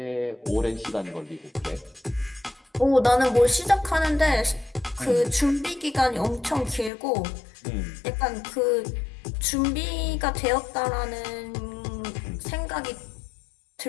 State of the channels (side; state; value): right; drops out; at 6.9 s